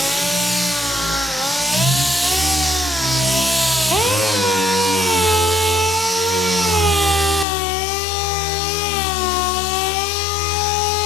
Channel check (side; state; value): right; drops out; at 7.5 s